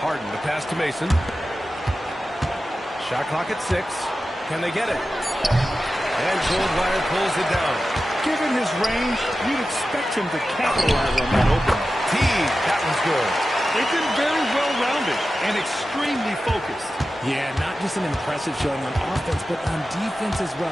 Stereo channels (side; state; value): both; normal; correlation 0.93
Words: Harden, the pass to Mason. Shot clock at 6. Can they get it? And Goldwire pulls it down. Given his range, you'd expect him to capitalize on that opening. Teague, that one's good. They've been very well-rounded and extremely focused. Yeah, not just an impressive showing on offense, but on defense as